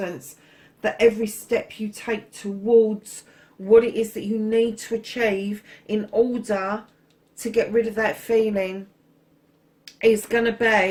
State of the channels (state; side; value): identical; both; correlation 1.00